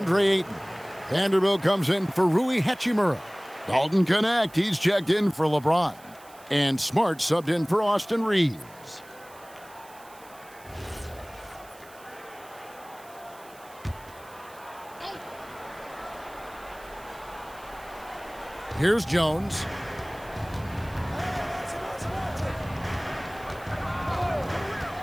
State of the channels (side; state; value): right; noise; hiss, 23 dB below the sound